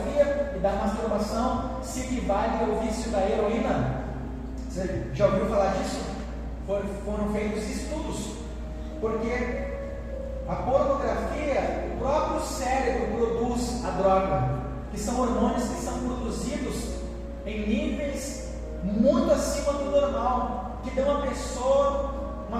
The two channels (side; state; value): both; identical; correlation 1.00